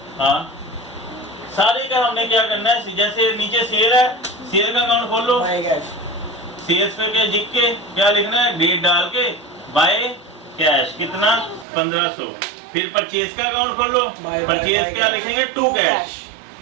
हाँ, सारे का हमने क्या करना है, जैसे नीचे सेल है, सेल का अकाउंट खोल लो, बाय कैश, सेल्स पे क्या लिख के क्या लिखना है, डेट डाल के बाय कैश कितना 1500। फिर परचेज का अकाउंट खोल लो, परचेज क्या लिखेंगे, टू कैश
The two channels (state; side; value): drops out; left; at 11.7 s